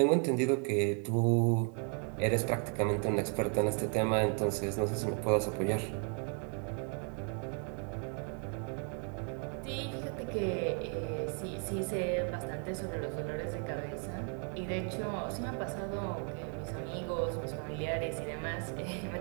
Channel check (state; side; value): quieter; left; 34.3 dB